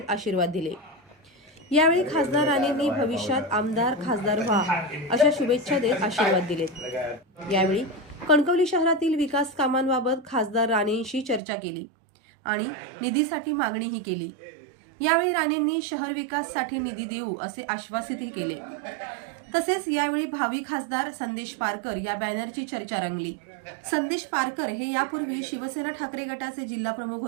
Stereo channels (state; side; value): drops out; left; at 11.4 s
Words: आशीर्वाद दिले। यावेळी खासदार राणेंनी भविष्यात आमदार खासदार व्हा अशा शुभेच्छा देत आशीर्वाद दिलेत। यावेळी कणकवली शहरातील विकास कामांबाबत खासदार राणेंशी चर्चा केली आणि निधीसाठी मागणीही केली। यावेळी राणेंनी शहर विकासासाठी निधी देऊ असे आश्वासितही केले। तसेच यावेळी भावी खासदार संदेश पारकर या बॅनरची चर्चा रंगली। संदेश पारकर हे यापूर्वी शिवसेना ठाकरे गटाचे जिल्हा प्रमुख